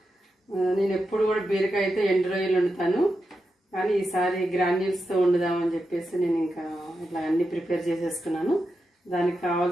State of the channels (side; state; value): both; normal; correlation 0.88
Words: నేను ఎప్పుడు కూడా బీరకాయ అయితే ఎండు రొయ్యలు వండుతాను, కానీ ఈసారి గ్రాన్యూల్స్తో వండుదామని చెప్పేసి నేను ఇంకా ఇట్లా అన్ని ప్రిపేర్ చేసేసుకున్నాను. దానికి